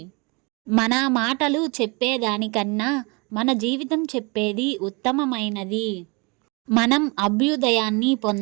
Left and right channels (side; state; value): left; quieter; 29.6 dB